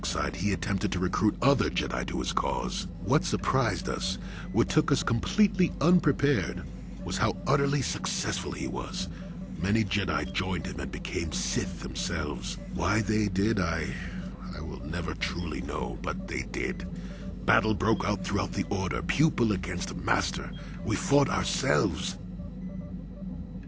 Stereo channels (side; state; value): both; identical; correlation 1.00